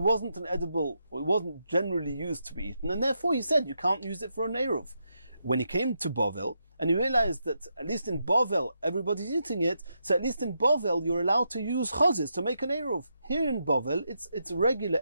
an edible, or it wasn't generally used to be eaten, and therefore he said you can't use it for an eruv. When he came to Bovel, and he realized that at least in Bovel everybody's eating it, so at least in Bovel you're allowed to use chozis to make an eruv. Here in Bovel it's regular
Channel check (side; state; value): both; inverted; correlation -0.83